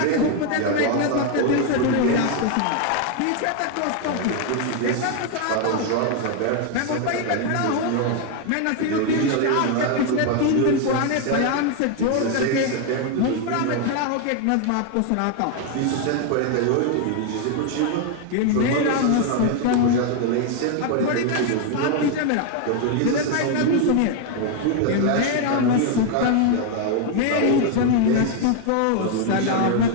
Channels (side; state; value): both; different; correlation 0.01